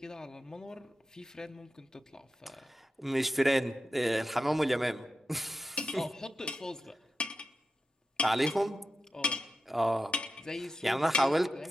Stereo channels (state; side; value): normal; both; correlation 0.91